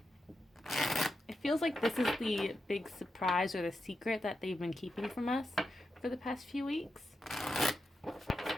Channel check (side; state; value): both; normal; correlation 0.87